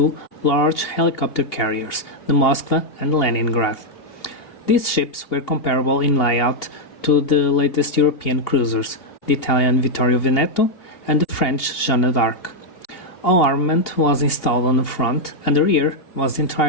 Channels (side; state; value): right; late; 2.8 ms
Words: large helicopter carriers, the Moskva and Leningrad. These ships were comparable in layout to the latest European cruisers, the Italian Vittorio Veneto and the French Jeanne d'Arc. All armament was installed on the front, and the rear was